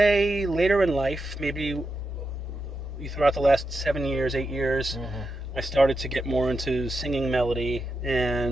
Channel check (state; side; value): normal; both; correlation 0.87